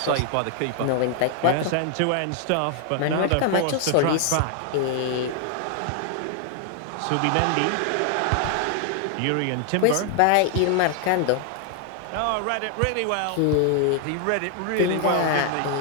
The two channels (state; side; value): different; both; correlation 0.00